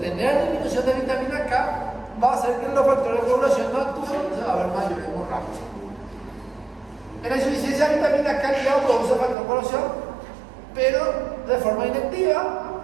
tener disminución de vitamina K va a hacer que los factores de coagulación no actúen y se va a ver mayor hemorragia. En la insuficiencia de vitamina K, el hígado produce el factor de coagulación, pero de forma inactiva.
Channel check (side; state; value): left; drops out; at 9.3 s